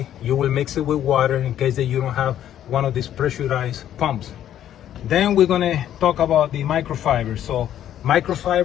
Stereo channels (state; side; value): quieter; right; 11.1 dB